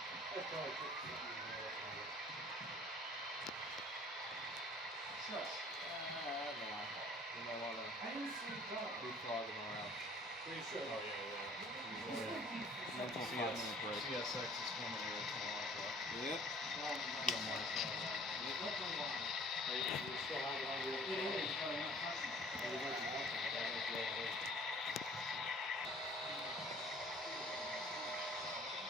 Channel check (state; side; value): normal; both; correlation 0.52